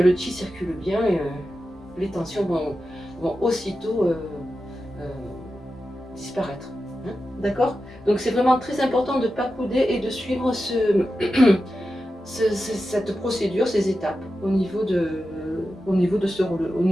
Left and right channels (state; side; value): normal; both; correlation 0.91